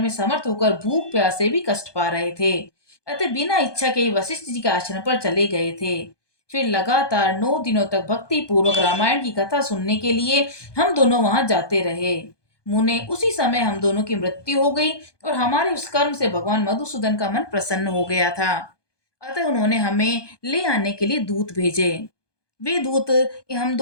में समर्थ होकर भूख प्यास से भी कष्ट पा रहे थे। अतः बिना इच्छा के ही वशिष्ठ जी के आश्रम पर चले गए थे। फिर लगातार 9 दिनों तक भक्ति पूर्वक रामायण की कथा सुनने के लिए हम दोनों वहां जाते रहे। मुने, उसी समय हम दोनों की मृत्यु हो गई और हमारे उस कर्म से भगवान मधुसूदन का मन प्रसन्न हो गया था। अतः उन्होंने हमें ले आने के लिए दूत भेजे। वे दूत हम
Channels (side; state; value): right; late; 1.2 ms